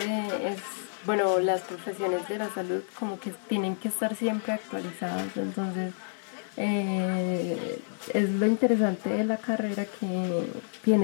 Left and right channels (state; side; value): silent; right; 58 dB below the other